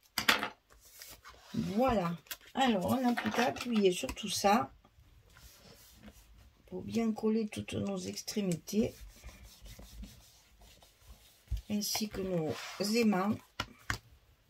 Voilà. Alors, on n'a plus qu'à appuyer sur tout ça pour bien coller toutes nos extrémités ainsi que nos aimants.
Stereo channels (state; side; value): identical; both; correlation 1.00